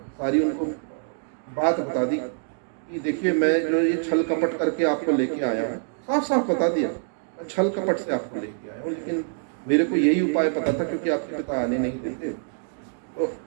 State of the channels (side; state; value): left; silent; digital silence